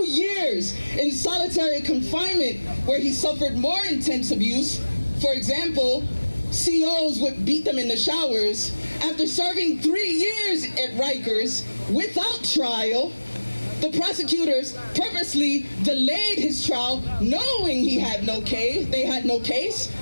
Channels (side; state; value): both; inverted; correlation -1.00